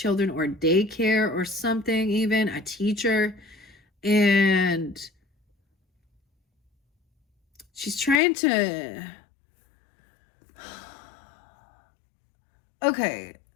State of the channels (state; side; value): drops out; right; at 8.2 s